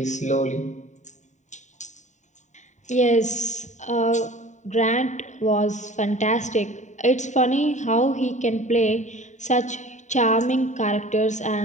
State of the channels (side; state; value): right; late; 0.34 ms